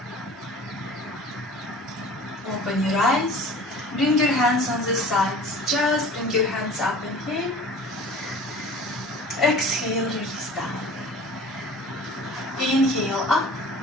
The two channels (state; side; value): normal; both; correlation 0.43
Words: Open your eyes, bring your hands on the sides, just bring your hands up, inhale, exhale, release down, inhale up,